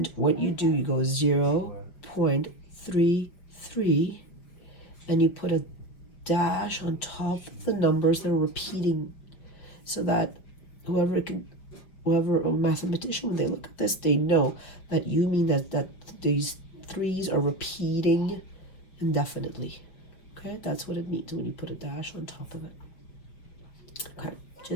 what you do, you go 0.33, and you put a dash on top of the numbers that are repeating, so that whoever a mathematician, when they look at this, they know that you mean that these threes are repeating indefinitely. Okay, that's what it means when you put a dash on top of it. Okay,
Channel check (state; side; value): late; right; 5.5 ms